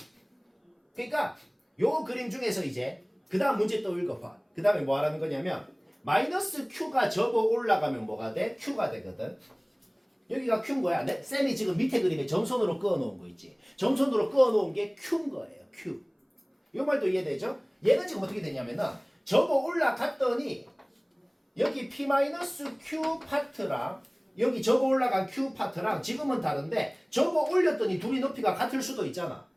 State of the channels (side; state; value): both; identical; correlation 1.00